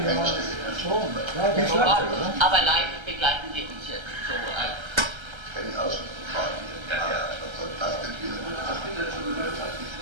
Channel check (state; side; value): late; left; 1.3 ms